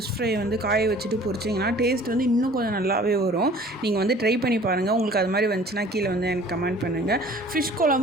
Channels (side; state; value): both; normal; correlation 0.50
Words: ஃப்ரை வந்து காய வச்சுட்டு பொரிச்சிங்கன்னா டேஸ்ட் வந்து இன்னும் கொஞ்சம் நல்லாவே வரும். நீங்கள் வந்து ட்ரை பண்ணி பாருங்கள். உங்களுக்கு அது மாதிரி வந்துச்சுன்னா கீழே வந்து எனக்கு கமெண்ட் பண்ணுங்கள். ஃபிஷ்